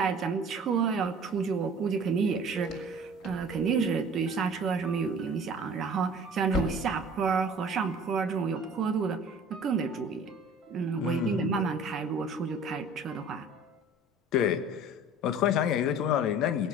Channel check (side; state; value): both; normal; correlation 0.45